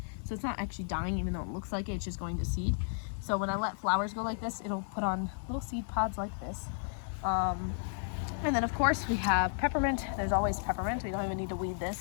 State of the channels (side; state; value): right; silent; digital silence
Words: So it's not actually dying, even though it looks like it, it's just going to seed. So when I let flowers go like this, it'll put on little seed pods like this. And then of course we have peppermint. There's always peppermint. We don't even need to weed